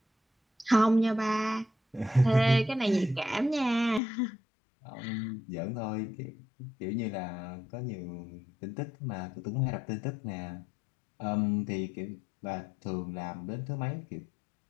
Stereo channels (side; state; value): right; drops out; at 4.0 s